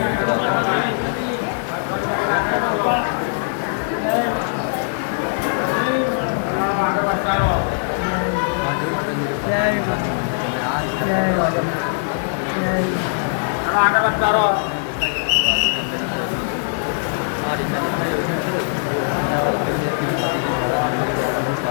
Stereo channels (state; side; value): silent; right; 65 dB below the other